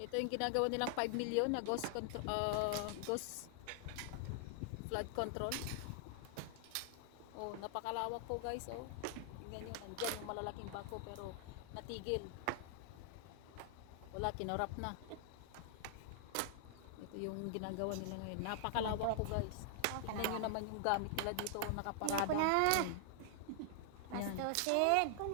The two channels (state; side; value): different; both; correlation 0.00